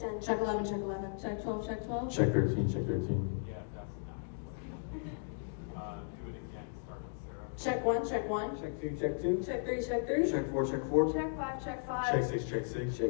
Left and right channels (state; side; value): silent; right; digital silence